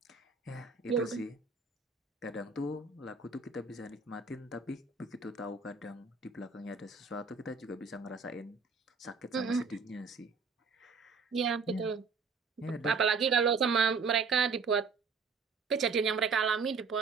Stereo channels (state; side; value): quieter; left; 4.9 dB